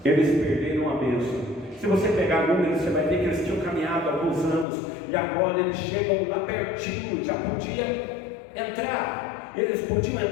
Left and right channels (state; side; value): drops out; right; at 4.7 s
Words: Eles perderam a bênção. Se você pegar números, você vai ver que eles tinham caminhado alguns anos e agora eles chegam lá pertinho, já podia entrar. Eles podiam